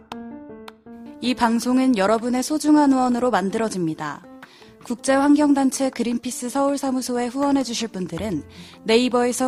이 방송은 여러분의 소중한 후원으로 만들어집니다. 국제환경단체 그린피스 서울사무소에 후원해주실 분들은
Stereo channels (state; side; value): identical; both; correlation 1.00